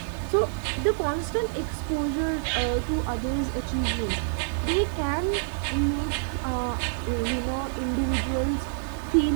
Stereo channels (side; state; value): left; silent; digital silence